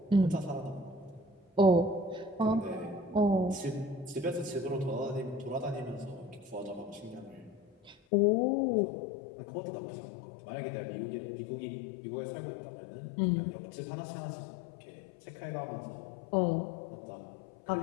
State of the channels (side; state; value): right; drops out; at 8.0 s